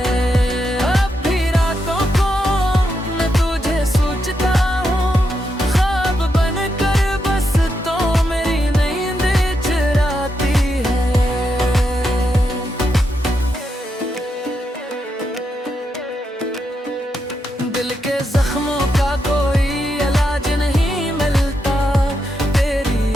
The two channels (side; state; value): both; normal; correlation 0.83